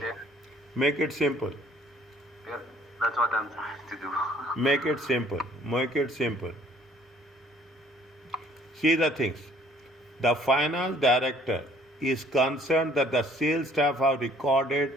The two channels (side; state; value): both; normal; correlation 0.59